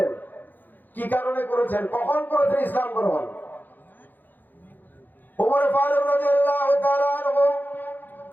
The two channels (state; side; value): late; right; 0.087 ms